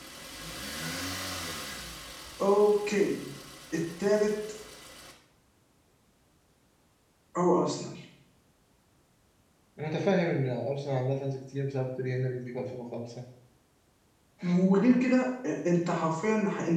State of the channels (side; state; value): both; identical; correlation 1.00